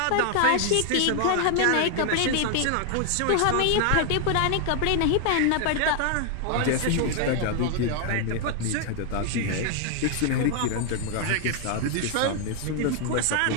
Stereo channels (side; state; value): both; different; correlation 0.00